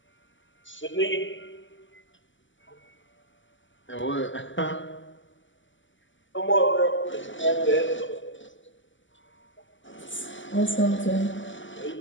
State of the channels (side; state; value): right; late; 0.55 ms